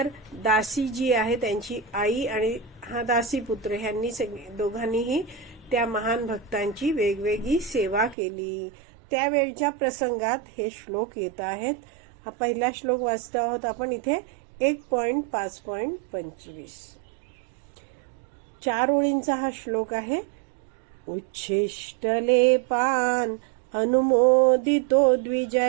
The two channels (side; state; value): left; drops out; at 8.2 s